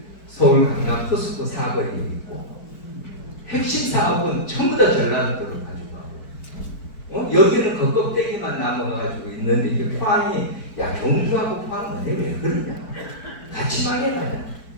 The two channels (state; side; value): late; right; 4.6 ms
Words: 서울 강남 포스코 사거리에 있고 핵심 사업은 전부 다 전라도로 가져가고 여기는 그 껍데기만 남아가지고 있는데 이게 포항이 야, 경주하고 포항은 왜 그러냐, 같이 망해가냐,